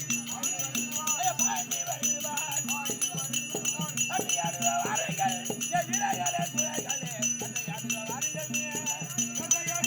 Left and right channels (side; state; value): both; identical; correlation 1.00